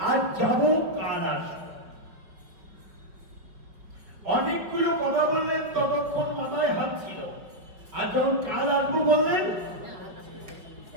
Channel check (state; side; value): late; left; 5.1 ms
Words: আজ যাব কাল আসবো। অনেকগুলো কথা বললেন, ততক্ষণ মাথায় হাত ছিল। আর যখন কাল আসবো বললেন,